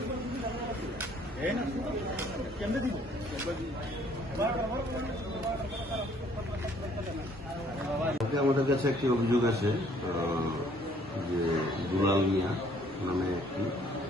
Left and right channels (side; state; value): both; normal; correlation 0.61